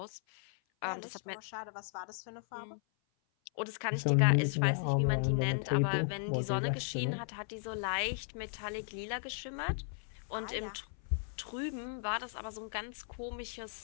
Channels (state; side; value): silent; right; 54 dB below the other